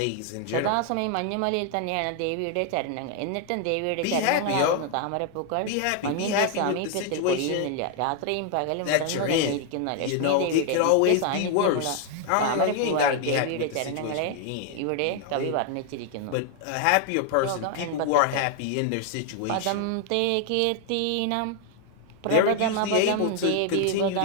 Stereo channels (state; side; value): different; both; correlation 0.00